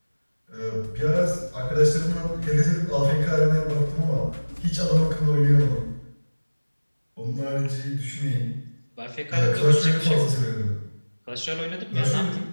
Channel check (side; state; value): both; inverted; correlation -1.00